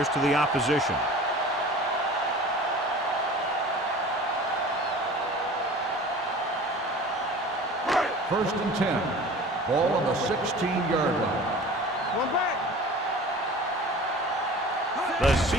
to the opposition. First and 10. Ball on the 16-yard line. One back. The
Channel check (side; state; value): both; normal; correlation 0.41